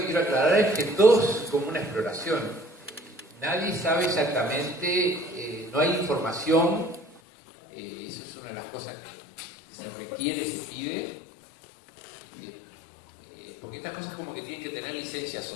quiero aclarar es que todo es como una exploración. Nadie sabe exactamente, no hay información, eso es una de las cosas que se requiere, se pide, porque estas cosas como que tienen que tener licencia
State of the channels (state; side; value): drops out; right; at 7.2 s